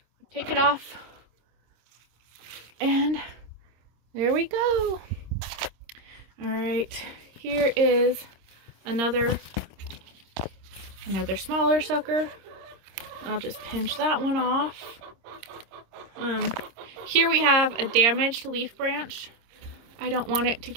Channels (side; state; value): left; late; 26 ms